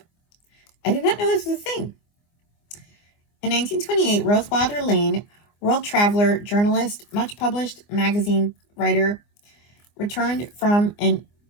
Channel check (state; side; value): late; right; 24 ms